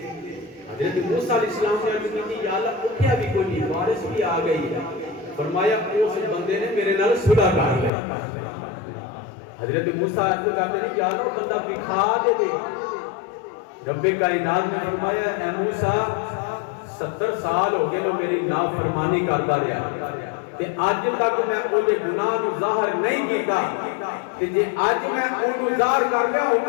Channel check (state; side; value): drops out; right; at 7.9 s